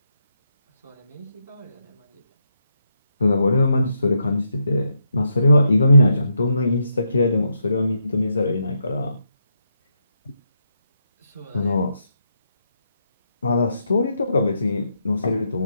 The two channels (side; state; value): both; inverted; correlation -0.80